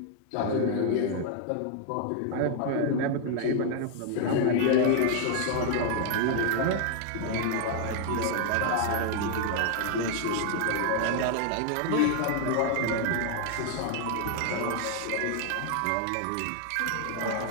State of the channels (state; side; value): different; both; correlation 0.00